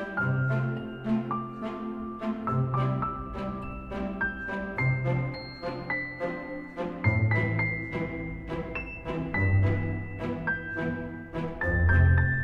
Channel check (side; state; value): both; identical; correlation 1.00